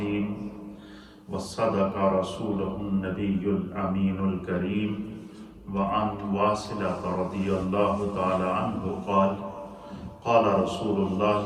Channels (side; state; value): both; identical; correlation 1.00